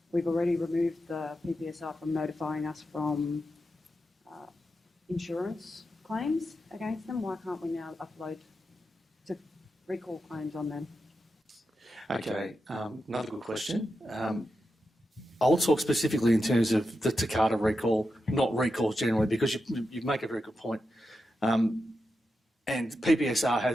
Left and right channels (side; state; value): both; normal; correlation 0.88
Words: We've already removed the PPSR from notifying us from insurance claims against them. Why can't we now upload to recall claims on them? Okay, another good question. I'll talk specifically in terms of the Takata recall, not recalls generally, because you make a very good point. And